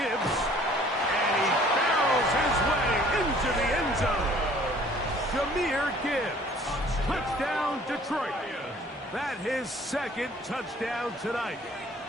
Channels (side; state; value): both; normal; correlation 0.54